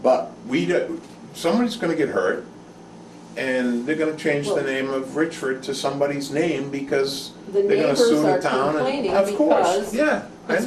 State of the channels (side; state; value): both; identical; correlation 1.00